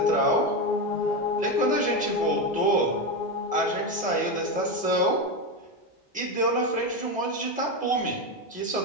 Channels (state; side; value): normal; both; correlation 0.14